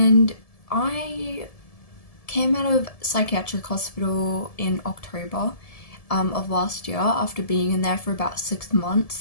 I came out of psychiatric hospital in October of last year after being in there for about 6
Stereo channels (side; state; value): right; late; 1.7 ms